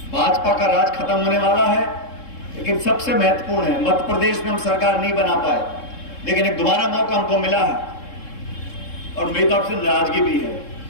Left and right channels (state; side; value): late; right; 3.7 ms